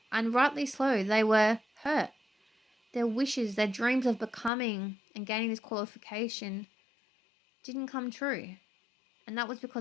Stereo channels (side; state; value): right; drops out; at 4.5 s